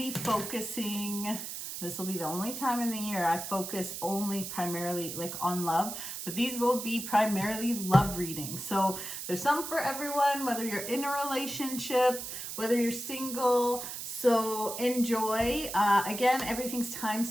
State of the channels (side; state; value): right; noise; hiss, 7 dB below the sound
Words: focusing, this will be the only time in the year I focus only primarily like on love, but these will be primarily love readings. So there's some for everyone, whether you're in a relationship, whether you're single. So enjoy. Again, everything's